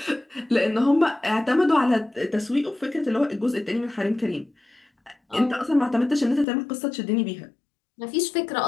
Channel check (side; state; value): right; drops out; at 6.5 s